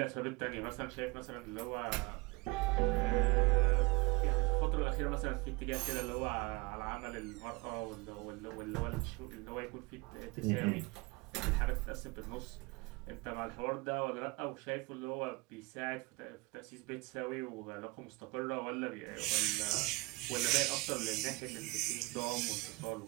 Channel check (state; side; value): quieter; left; 25.4 dB